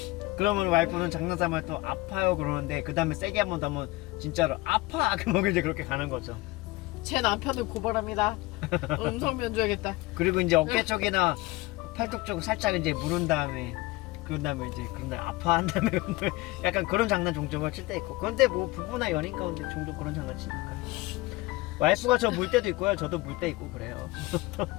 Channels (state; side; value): quieter; right; 21.1 dB